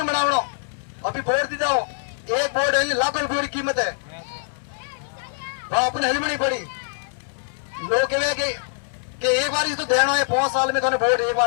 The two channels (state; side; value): silent; right; 63 dB below the other